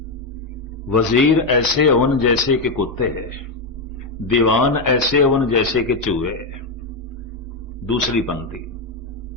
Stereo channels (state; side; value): quieter; right; 3.2 dB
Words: वजीर ऐसे होन जैसे कि कुत्ते, दीवान ऐसे होन जैसे कि चूहे। दूसरी पंक्ति,